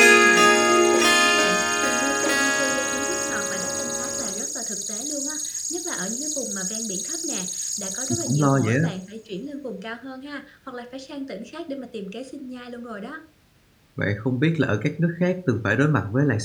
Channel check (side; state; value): both; identical; correlation 1.00